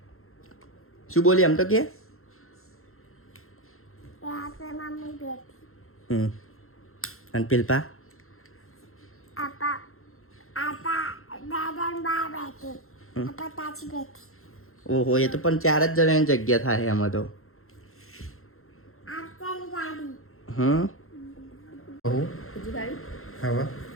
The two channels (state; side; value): late; right; 0.62 ms